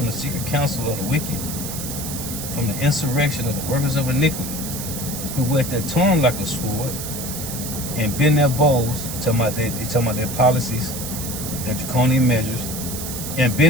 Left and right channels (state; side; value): noise; right; hiss, 7 dB below the sound